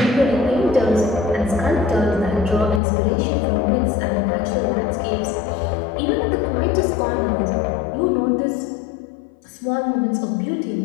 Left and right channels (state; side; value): drops out; right; at 2.8 s